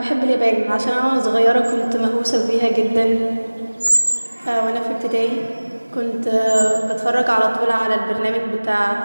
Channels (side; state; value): both; inverted; correlation -1.00